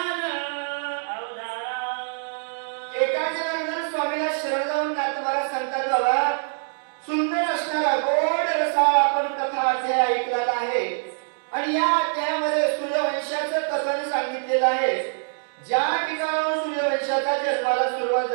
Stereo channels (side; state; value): left; silent; 62 dB below the other